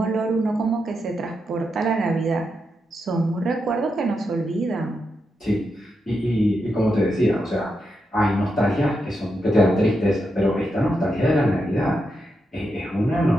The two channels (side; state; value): both; normal; correlation 0.85